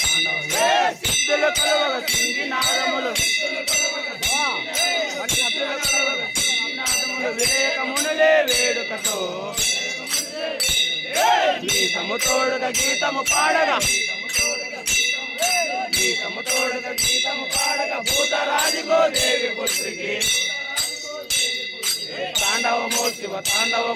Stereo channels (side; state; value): both; identical; correlation 1.00